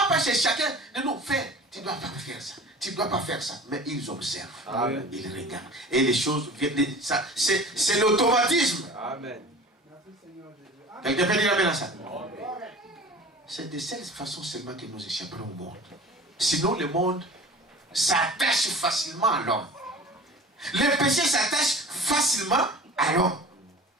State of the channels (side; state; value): both; normal; correlation 0.40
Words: pas chez chacun de nous faire. Tu ne dois pas faire ça. Tu ne dois pas faire ça. Mais ils observent. Amen. Ils regardent. Et les choses viennent. C'est l'automatisme. Amen. Quelqu'un peut dire amen à ça? C'est de cette façon seulement que nous échapperons au monde. Sinon, le monde s'attache facilement à l'homme. Le péché s'attache facilement à l'homme.